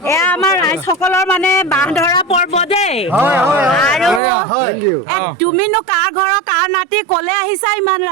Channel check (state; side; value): drops out; left; at 4.2 s